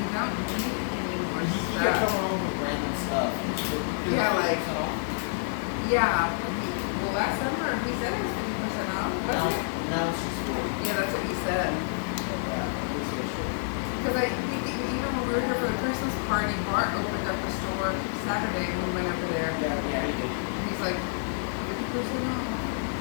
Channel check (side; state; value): right; silent; digital silence